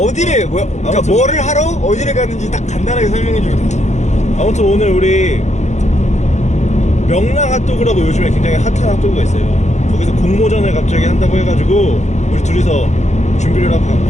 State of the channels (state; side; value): late; right; 0.33 ms